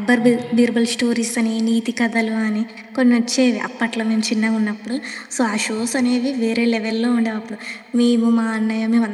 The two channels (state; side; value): identical; both; correlation 1.00